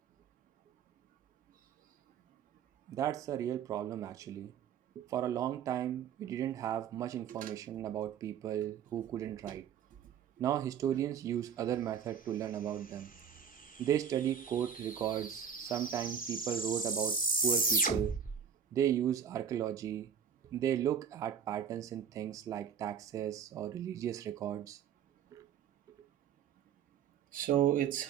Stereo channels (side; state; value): left; quieter; 8.0 dB